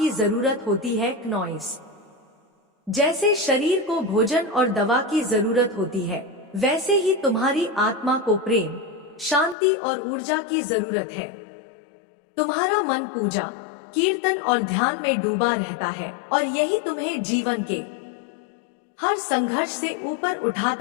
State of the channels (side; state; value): right; drops out; at 9.6 s